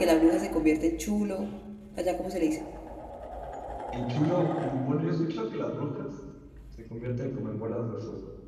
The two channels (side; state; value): both; identical; correlation 1.00